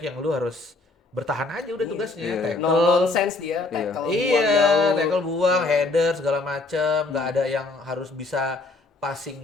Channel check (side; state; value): right; quieter; 3.3 dB